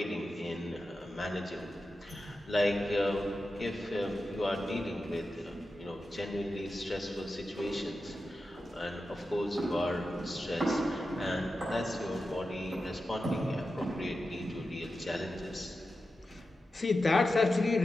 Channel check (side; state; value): both; normal; correlation 0.91